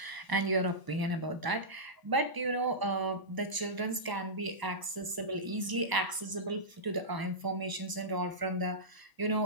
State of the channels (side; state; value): left; late; 1.0 ms